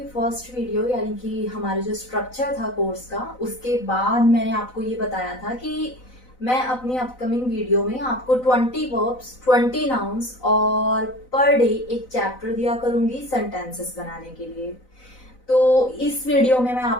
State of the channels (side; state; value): right; late; 4.0 ms